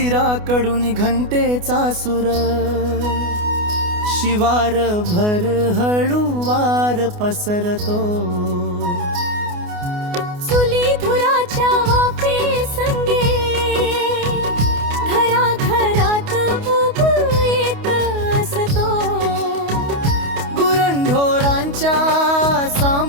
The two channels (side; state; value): left; late; 28 ms